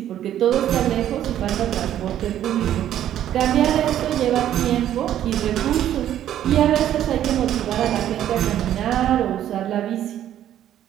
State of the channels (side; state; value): left; quieter; 11.4 dB